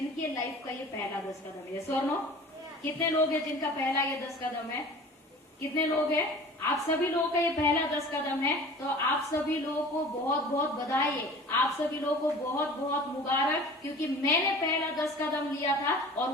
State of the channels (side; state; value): both; normal; correlation 0.42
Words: लाइफ का ये पहला 10 कदम है। यस और नो? कितने लोग हैं जिनका पहला ये 10 कदम है? कितने लोग हैं? आप सभी लोगों का ये पहला 10 कदम है। तो आप सभी लोगों को बहुत बहुत बधाई, आप सभी लोगों को बहुत बहुत मुबारक, क्योंकि मैंने पहला 10 कदम लिया था और